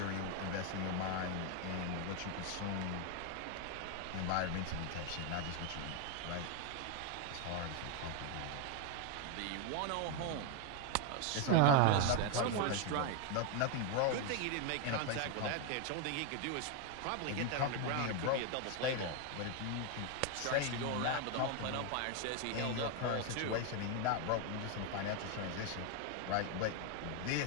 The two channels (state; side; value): different; both; correlation 0.01